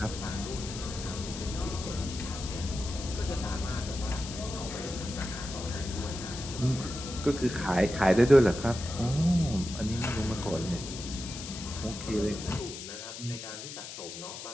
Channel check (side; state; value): left; noise; hiss, 10 dB below the sound